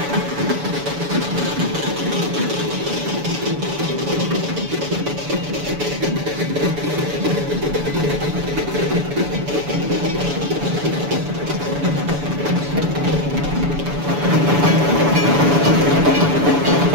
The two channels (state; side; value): late; left; 7.0 ms